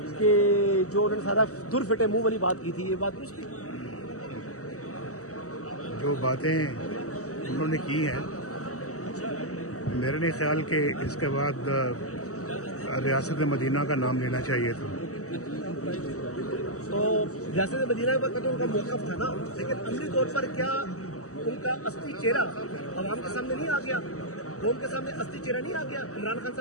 کہ جو انہوں نے سارا در پھٹے منہ والی بات کی تھی، یہ بات درست تھی؟ جو باتیں انہوں نے کی ہیں میرے نہیں خیال کہ اس کے بعد ریاست مدینہ کا نام لینا چاہیے تھا. تو ریاست مدینہ پر تو ان کا موقف تھا نا، لیکن عملی طور پر کیا ان کا اصلی چہرہ عوام کے سامنے نہیں آ گیا؟ قوم کے سامنے اصلی چہرہ نہیں آ گیا؟ عمران خان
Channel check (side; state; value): right; late; 0.66 ms